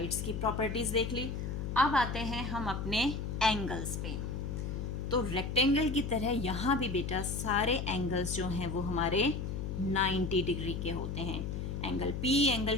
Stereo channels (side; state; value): left; noise; hum, 4 dB below the sound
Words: की प्रॉपर्टीज़ देख ली। अब आते हैं हम अपने एंगल्स पे। तो रेक्टेंगल की तरह यहाँ भी बेटा सारे एंगल्स जो हैं वो हमारे 90 डिग्री के होते हैं। Angle P,